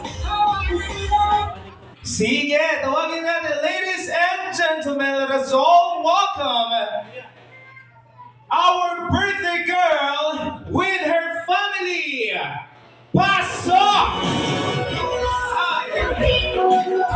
wanna see that. Sige, tawagin natin, ladies and gentlemen, let us all welcome our birthday girl with her family. Pasok!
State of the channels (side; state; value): both; identical; correlation 1.00